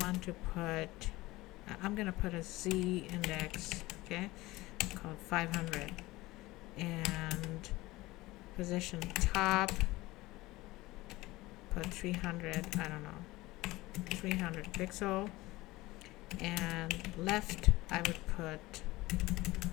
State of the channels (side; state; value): right; quieter; 19.4 dB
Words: to put, I'm gonna put a Z index, okay, called 500, and position top, put 300, I don't know, 300 pixel, and left I would put